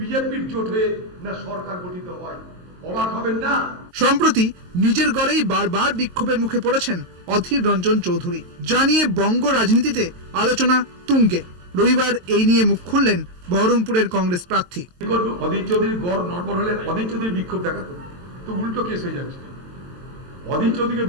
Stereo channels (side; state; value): left; late; 22 ms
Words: জোট হয়ে না সরকার গঠিত হয়, অবাক হবেন না? সম্প্রতি নিজের গড়েই বারবার বিক্ষোভের মুখে পড়েছেন অধীর রঞ্জন চৌধুরী। জানিয়ে বঙ্গ রাজনীতিতে আলোচনা তুঙ্গে। রবিবার এই নিয়ে মুখ খুললেন বহরমপুরের কংগ্রেস প্রার্থী। অধীর চৌধুরীর গড় নড়বড় হলে অধীর চৌধুরী বিক্ষোভ দেখাতো, তো উল্টো কেস হয়ে যাচ্ছে। অধীর চৌধুরীকে